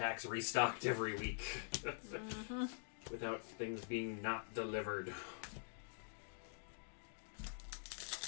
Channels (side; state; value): right; silent; digital silence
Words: restocked every week. Without things being not delivered.